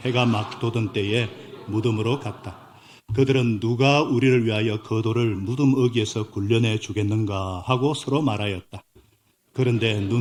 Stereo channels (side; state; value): both; identical; correlation 1.00